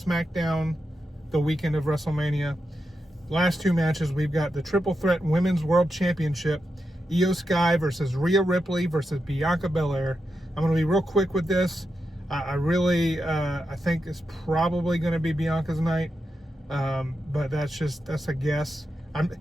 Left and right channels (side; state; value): both; normal; correlation 0.87